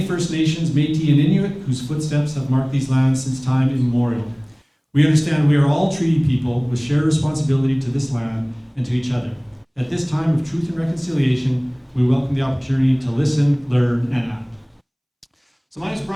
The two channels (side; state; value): both; identical; correlation 1.00